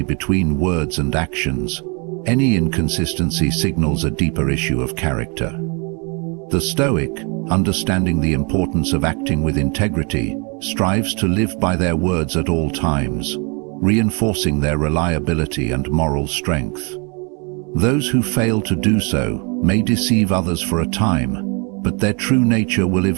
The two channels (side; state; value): left; quieter; 33.5 dB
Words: between words and actions, any inconsistency signals a deeper issue of character. The Stoic, understanding the importance of acting with integrity, strives to live by their words at all times, reinforcing their reliability and moral strength. Those who fail to do so may deceive others for a time, but their true nature will